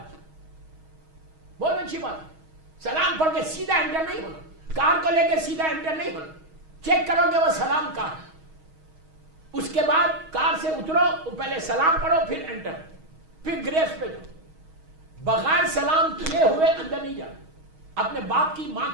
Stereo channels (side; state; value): left; late; 6.3 ms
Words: بہت اچھی بات ہے. سلام پڑھ کے سیدھا انٹر نہیں ہونا, کار کو لے کے سیدھا انٹر نہیں ہونا, چیک کرو کہ وہ سلام کہاں ہے. اس کے بعد کار سے اترو, پہلے سلام پڑھو پھر انٹر, پھر گریف پہ جاؤ. بغیر سلام کیے ہوئے اندر نہیں جانا. اپنے باپ کی, ماں